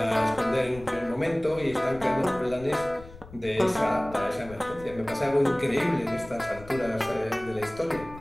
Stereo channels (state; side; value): noise; left; rumble, 17 dB below the sound